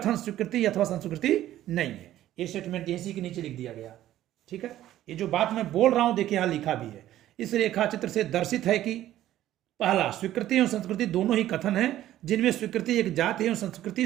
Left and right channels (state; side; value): quieter; left; 13.3 dB